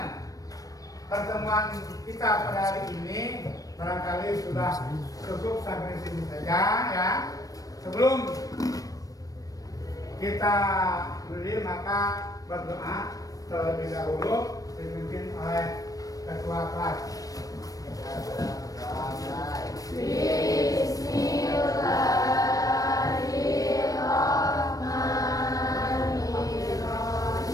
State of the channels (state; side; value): late; right; 0.17 ms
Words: pertemuan kita pada hari ini barangkali sudah cukup sampai sini saja, ya. Sebelum kita berdiri, maka berdoa terlebih dahulu dipimpin oleh ketua kelas.